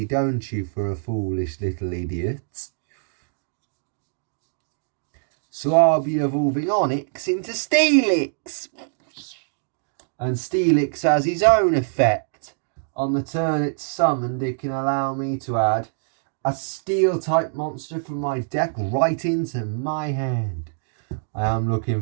don't you, for a foolish little idiot? So I'll be evolving Onyx into Steelix. And Steelix has his own effect. On the turn it's summoned, it can allow me to add a Steel-type monster from my deck right into my hand. I am looking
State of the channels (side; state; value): left; silent; digital silence